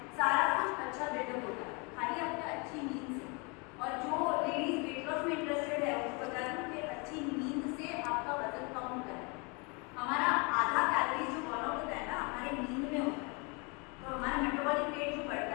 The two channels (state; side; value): quieter; right; 31.2 dB